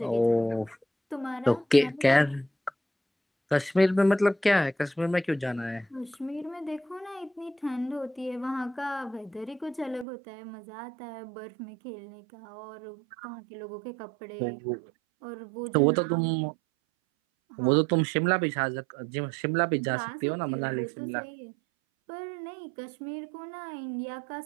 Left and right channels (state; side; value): drops out; left; at 10.1 s